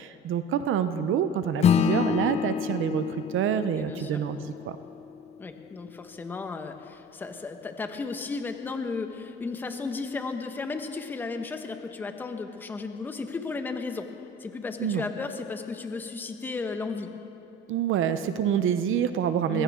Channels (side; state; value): both; normal; correlation 0.39